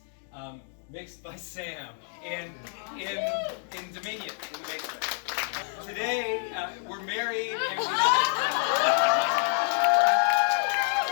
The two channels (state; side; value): silent; right; 59 dB below the other